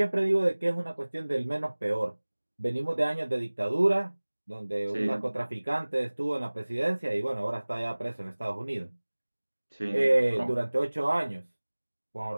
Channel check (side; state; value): both; inverted; correlation -1.00